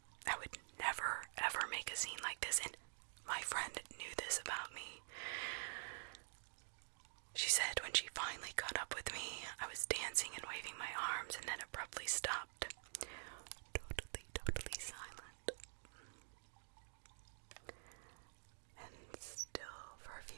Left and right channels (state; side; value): silent; left; digital silence